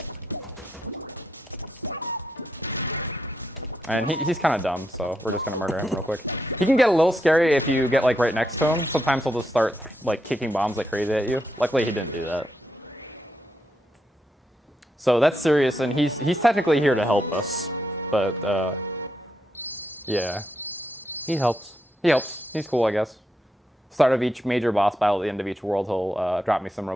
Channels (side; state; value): both; normal; correlation 0.81